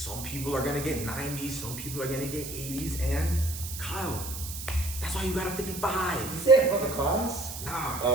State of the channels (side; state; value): right; noise; hiss, 8 dB below the sound